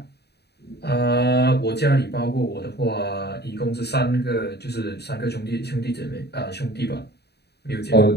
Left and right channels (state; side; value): late; right; 0.48 ms